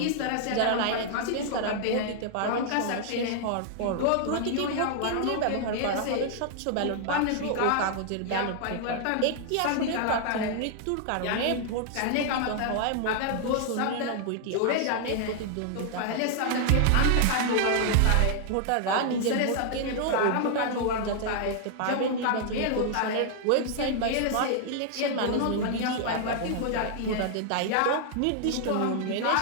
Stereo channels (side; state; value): both; different; correlation 0.00